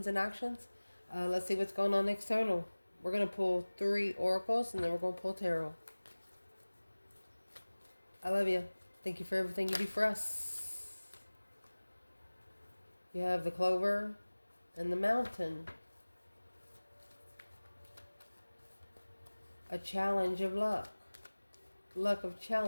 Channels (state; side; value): inverted; both; correlation -1.00